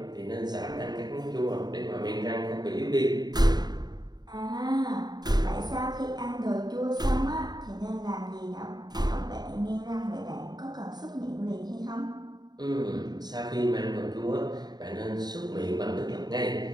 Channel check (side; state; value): left; late; 0.20 ms